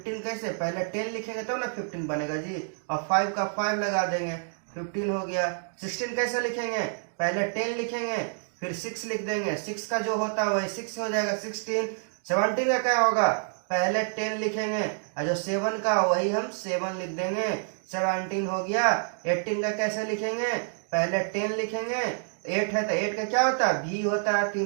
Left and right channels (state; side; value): silent; left; 59 dB below the other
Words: कैसे, पहले 10 लिखेंगे तो ना 15 बनेगा जी, और 5 का 5 लगा देंगे 15 हो गया। 16 कैसे लिखेंगे, पहले 10 लिखेंगे फिर 6 लिख देंगे, 6 का जो होता है वही 6 हो जाएगा 16। 17 का क्या होगा, पहले 10 लिखेंगे और जो 7 का वही हम 7 लिख देंगे, 17 हो गया। 18 का कैसे लिखेंगे, पहले 10 लिखेंगे, 8 है तो 8 का क्या होता है भी होता है,